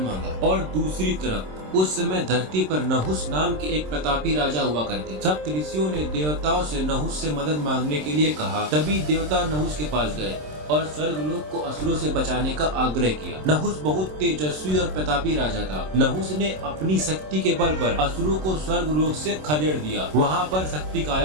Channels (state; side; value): late; left; 27 ms